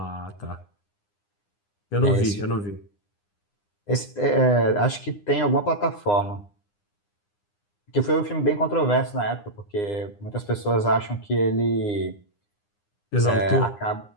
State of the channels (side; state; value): right; late; 9.8 ms